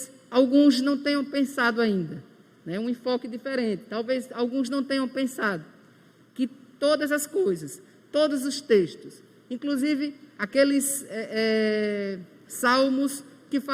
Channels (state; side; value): identical; both; correlation 1.00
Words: alguns não tenham pensado ainda, né? Um enfoque diferente. Talvez alguns não tenham pensado que todas as coisas, todos os textos, inclusive aqueles salmos que